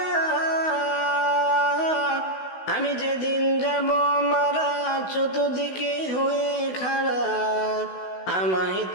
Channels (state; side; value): late; right; 16 ms